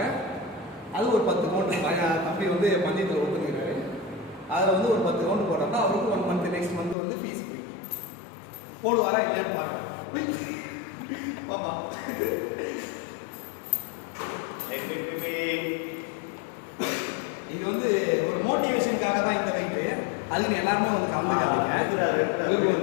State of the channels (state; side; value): drops out; right; at 7.0 s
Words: அது ஒரு 10 ரவுண்டு தம்பி வந்து பந்தயத்தில் ஒத்துக்கிறாரு. அதில் வந்து ஒரு 10 ரவுண்டு போடுறப்ப அவருக்கு 1 மந்த் நெக்ஸ்ட் மந்த் வந்து ஃபீஸ் ஃப்ரீ. போடுவாரா இல்லையான்னு பாருங்க. ஆமா, இது வந்து ஒரு மோட்டிவேஷனுக்காக தான் இந்த வெயிட்டு. அதுக்கு எல்லாருமே வந்து கலந்துக்காதீங்க,